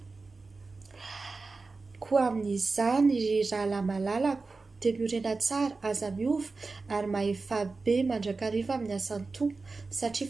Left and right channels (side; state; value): left; quieter; 3.9 dB